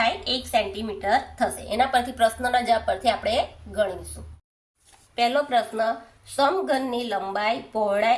1 સેન્ટીમીટર થશે। એના પરથી પ્રશ્નના જવાબ પરથી આપણે ગણીશું। પહેલો પ્રશ્ન સમઘનની લંબાઈ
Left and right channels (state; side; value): identical; both; correlation 1.00